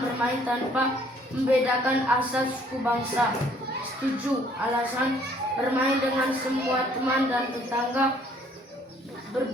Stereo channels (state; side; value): normal; both; correlation 0.61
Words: bermain tanpa membedakan asal suku bangsa. Setuju. Alasan bermain dengan semua teman dan tetangga